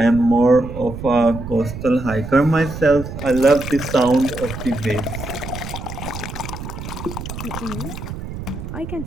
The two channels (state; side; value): noise; right; rumble, 9 dB below the sound